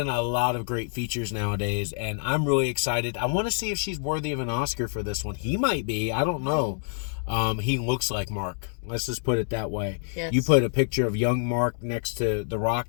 a lot of great features nowadays, and I'm really excited. I want to see if she's worthy of an Oscar for this one. He might be. I don't know. He looks like Mark. Let's just put it that way. Yes. You put a picture of young Mark next to The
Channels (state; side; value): silent; right; 58 dB below the other